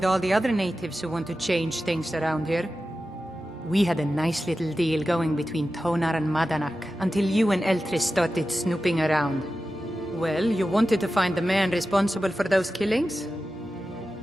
all the other natives who want to change things around here. We had a nice little deal going between Tonar and Madanach until you and Eltris started snooping around. Well, you wanted to find the man responsible for those killings?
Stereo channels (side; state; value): both; normal; correlation 0.93